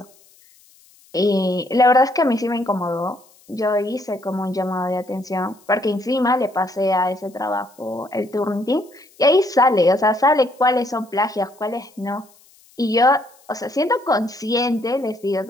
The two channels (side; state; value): left; noise; hiss, 29 dB below the sound